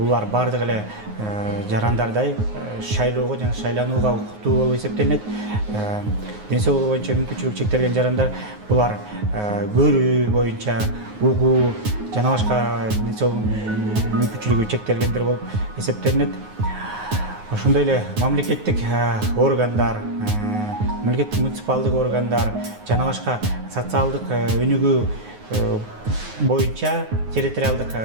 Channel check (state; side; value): late; left; 9.5 ms